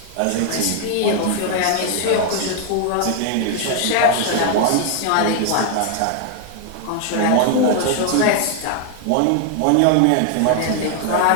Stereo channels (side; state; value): both; different; correlation 0.00